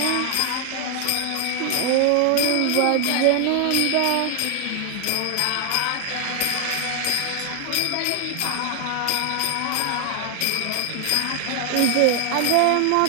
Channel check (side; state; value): both; different; correlation 0.00